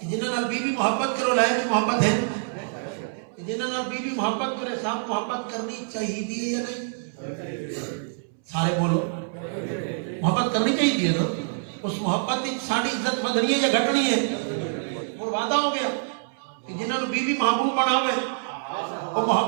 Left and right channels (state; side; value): silent; left; 61 dB below the other